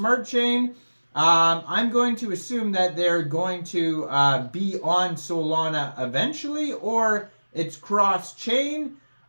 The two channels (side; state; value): both; inverted; correlation -1.00